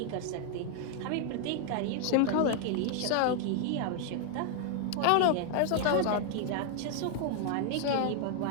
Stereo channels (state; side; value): different; both; correlation 0.00